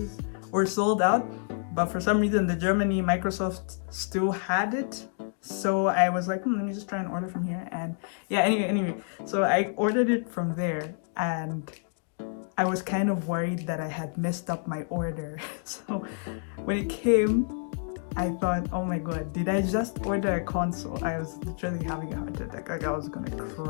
were sold out, but for some reason the Germany Microsoft still had it. So I was like, let me just try and order from here. And yeah, anyway, so I ordered it from there, and I was kind of worried that I had messed up my order. So when it came, I thought, oh my god, did I just order a console? I was literally having a heart attack. Like I was gonna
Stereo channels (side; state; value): right; silent; 59 dB below the other